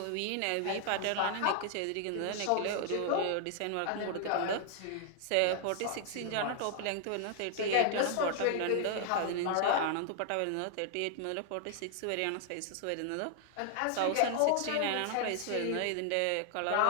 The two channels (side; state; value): both; different; correlation 0.00